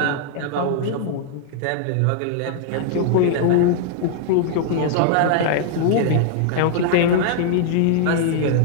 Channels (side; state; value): both; different; correlation 0.00